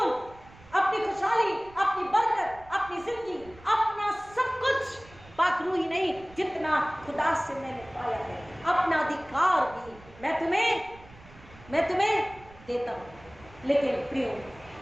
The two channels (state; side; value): noise; right; rumble, 22 dB below the sound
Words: अपनी खुशहाली, अपनी बरकत, अपनी जिंदगी, अपना सब कुछ, पाकरू ही नहीं, जितना खुदा से मैंने पाया है, अपना अधिकार भी मैं तुम्हें देता हूं। लेकिन प्रियो